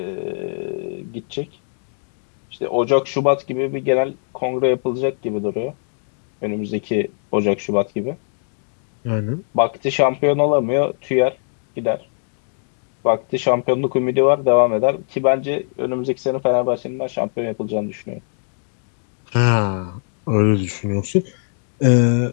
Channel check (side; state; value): right; silent; 65 dB below the other